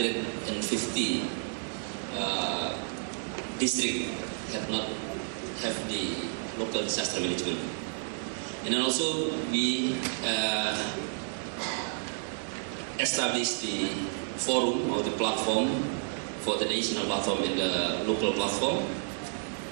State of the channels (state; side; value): silent; left; digital silence